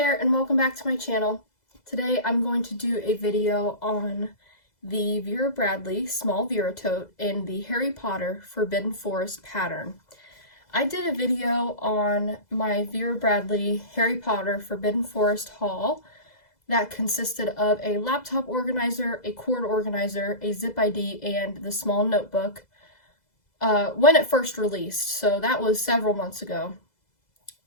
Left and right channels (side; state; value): right; late; 2.0 ms